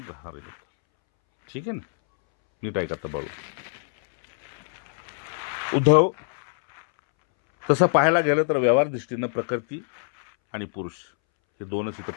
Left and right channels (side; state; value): right; silent; 62 dB below the other